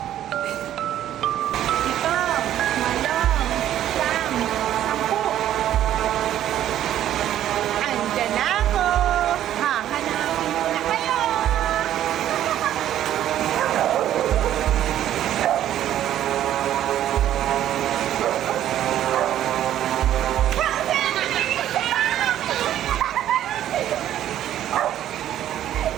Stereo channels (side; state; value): left; quieter; 11.7 dB